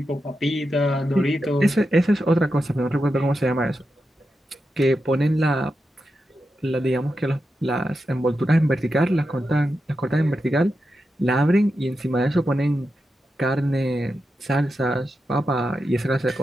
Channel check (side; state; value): both; normal; correlation 0.89